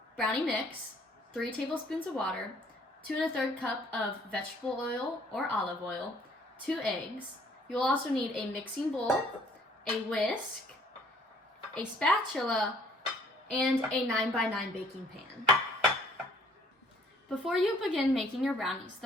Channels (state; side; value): normal; both; correlation 0.59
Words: Brownie mix, 3 tablespoons of water, 2 1/3 cup of vegetable oil or olive oil, 2 eggs. You will also need a mixing bowl, a whisk, a spatula, and a 9x9 baking pan. Before you begin making your brownies,